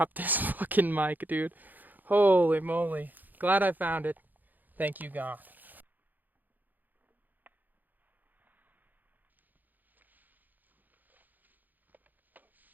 this fucking mic, dude. Holy moly. Glad I found it. Thank you, God.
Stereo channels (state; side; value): late; left; 0.085 ms